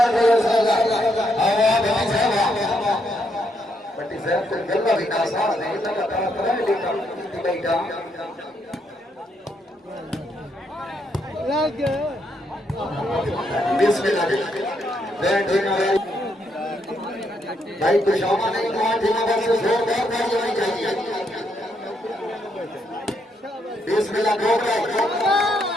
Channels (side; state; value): both; normal; correlation 0.76